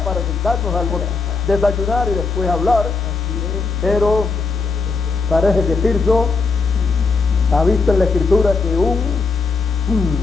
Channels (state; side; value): quieter; right; 4.3 dB